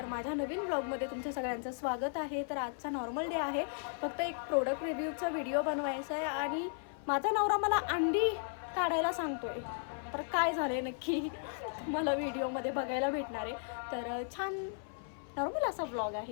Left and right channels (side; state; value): right; silent; 54 dB below the other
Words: माझ्या नवीन ब्लॉगमध्ये तुमच्या सगळ्यांचं स्वागत आहे. तर आजचा नॉर्मल डे आहे. फक्त एक प्रोडक्ट रिव्ह्यूचा व्हिडिओ बनवायचा आहे आणि माझा नवरा मला अंडी काढायला सांगतोय. तर काय झालं नक्की मला व्हिडिओमध्ये बघायला भेटणार आहे. तर छान नॉर्मल असा ब्लॉग